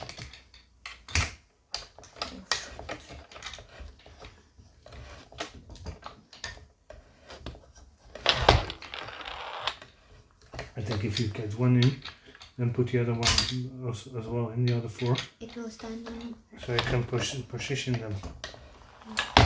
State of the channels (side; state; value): both; identical; correlation 1.00